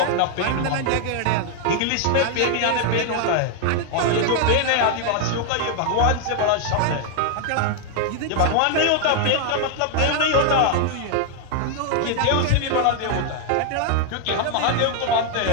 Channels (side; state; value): both; different; correlation 0.00